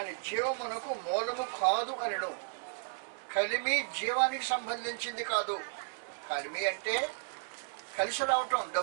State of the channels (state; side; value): silent; left; digital silence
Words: జీవమునకు మూలము కాదు అనను. కలిమి జీవానికి సంబంధించింది కాదు. కలిమి అంటే కలిసి రావటం,